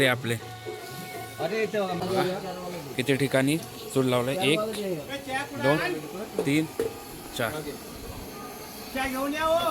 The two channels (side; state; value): both; identical; correlation 1.00